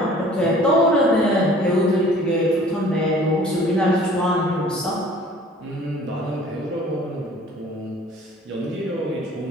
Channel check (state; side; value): normal; both; correlation 0.50